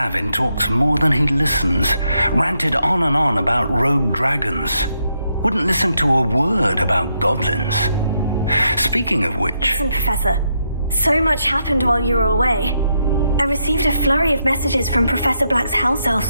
talks more than he listens. Ranted on and on about rogue dragons. Wouldn't listen to a word about goblins. Speaking of which... Listen, Professor. So much happened while you were away. I received a flurry of messages from Professor Black's house elf,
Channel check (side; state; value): both; inverted; correlation -0.80